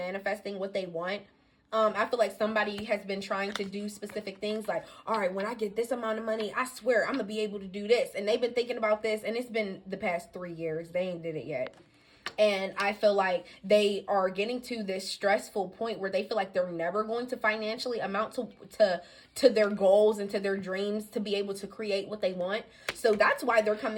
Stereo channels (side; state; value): both; identical; correlation 1.00